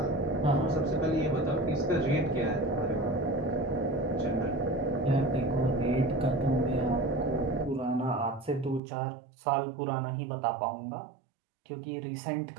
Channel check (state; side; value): drops out; left; at 8.8 s